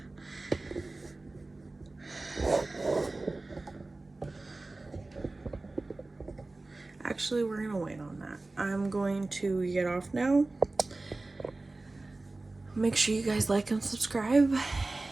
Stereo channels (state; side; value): quieter; left; 3.1 dB